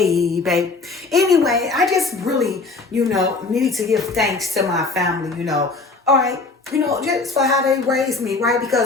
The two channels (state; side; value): quieter; right; 3.8 dB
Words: Anyway, I just really, need to give thanks to my family, All right. Just for how they raised me, right?